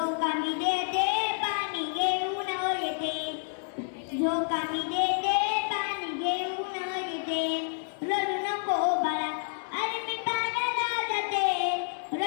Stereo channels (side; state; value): right; silent; digital silence